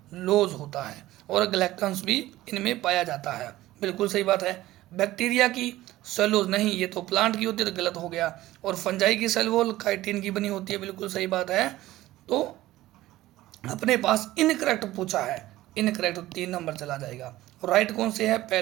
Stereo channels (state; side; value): quieter; left; 16.2 dB